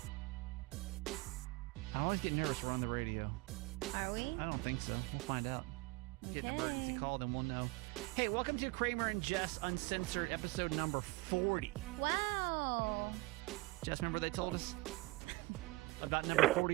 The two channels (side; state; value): left; quieter; 22.6 dB